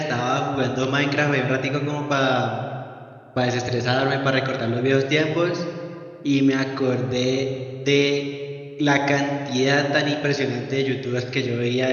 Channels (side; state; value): both; identical; correlation 1.00